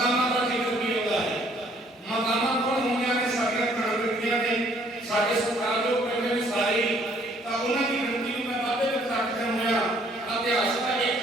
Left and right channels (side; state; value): both; normal; correlation 0.63